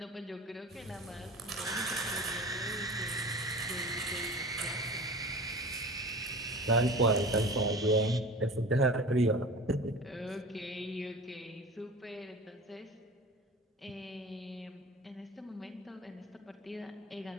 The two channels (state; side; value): normal; both; correlation 0.36